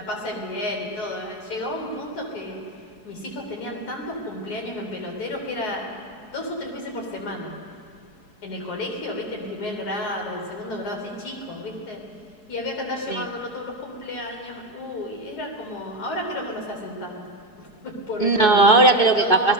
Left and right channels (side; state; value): right; late; 4.7 ms